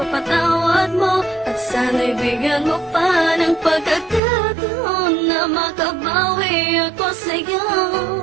mo at sana'y bigyan mo pa ng pagkakataon na makabawi ako sa'yo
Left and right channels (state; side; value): drops out; left; at 4.2 s